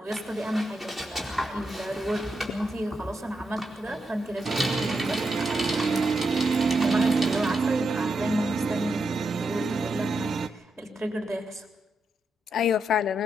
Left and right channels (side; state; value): both; normal; correlation 0.84